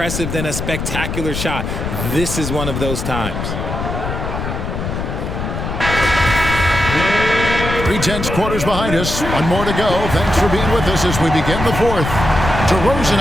than a spectacular shot. This is one of those times. 3/10 quarters behind us. One more to go. Thanks for being with us as we begin the fourth. DeRozan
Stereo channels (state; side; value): noise; left; rumble, 4 dB below the sound